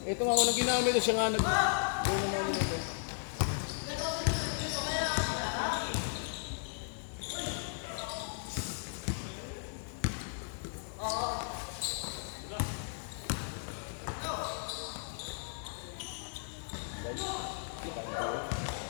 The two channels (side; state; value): right; silent; digital silence